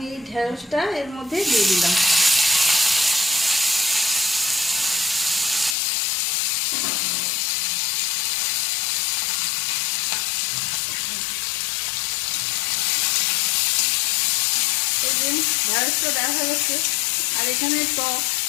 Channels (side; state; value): right; drops out; at 5.8 s